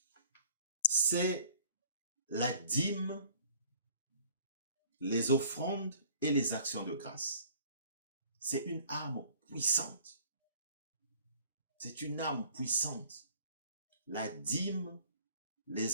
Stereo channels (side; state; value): both; inverted; correlation -0.52